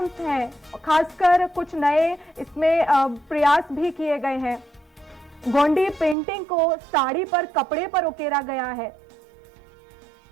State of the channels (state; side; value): drops out; left; at 6.2 s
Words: हैं, खासकर कुछ नए इसमें प्रयास भी किए गए हैं। गोंडी पेंटिंग को साड़ी पर, कपड़े पर उकेरा गया है।